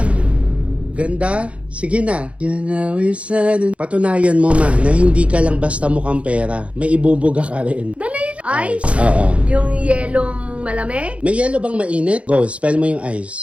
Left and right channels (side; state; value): left; late; 0.062 ms